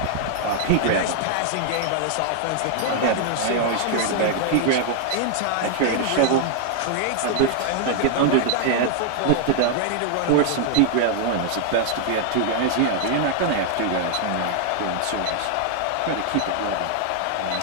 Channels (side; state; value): both; different; correlation 0.00